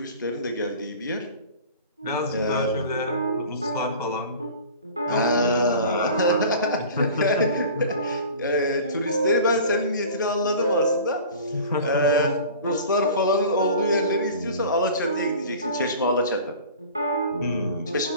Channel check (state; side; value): inverted; both; correlation -0.41